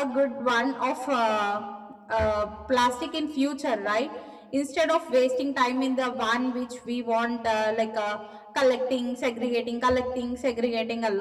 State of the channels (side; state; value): both; identical; correlation 1.00